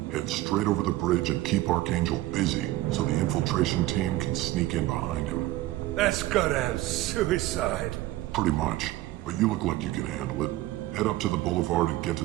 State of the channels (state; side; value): quieter; left; 16.7 dB